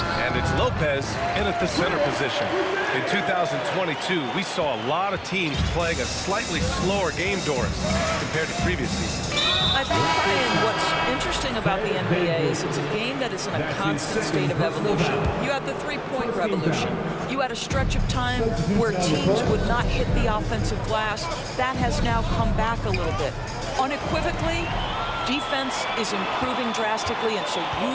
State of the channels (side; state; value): both; identical; correlation 1.00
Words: it's Lopez in at the center position. In 2022, we saw a lot of teams playing a slightly slower game, Doris, compared to previous seasons. I think, Brian, what's interesting about the NBA is it's a game that is in a constant state of evolution. You had the three-point revolution. You had a stretch of time where teams would not hit the offensive glass. That has now come back a little bit. Unequivocally, defense is improving drastically, and so